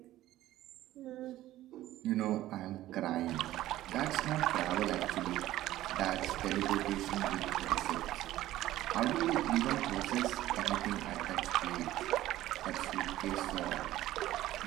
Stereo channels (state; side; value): quieter; left; 14.8 dB